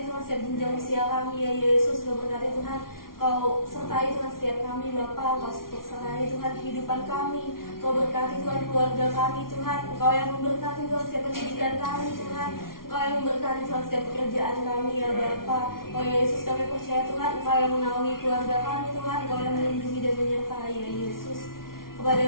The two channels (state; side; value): late; right; 0.92 ms